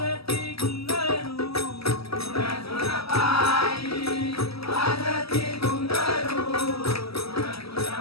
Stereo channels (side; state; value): right; late; 0.76 ms